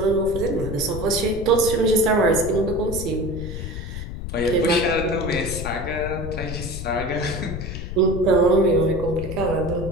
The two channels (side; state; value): left; noise; rumble, 7 dB below the sound